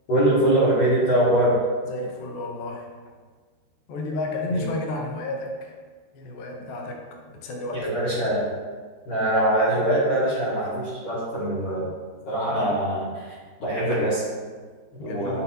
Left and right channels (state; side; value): late; right; 13 ms